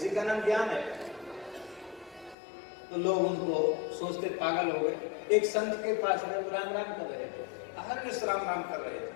का नाम ज्ञान है। तो लोग उनको सोचते पागल हो गए। एक संत के पास राम राम कर रहे थे, अहर्निश राम राम कर रहे थे,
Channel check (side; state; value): right; drops out; at 2.4 s